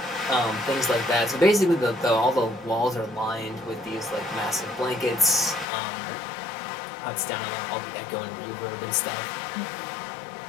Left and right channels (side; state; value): right; drops out; at 5.7 s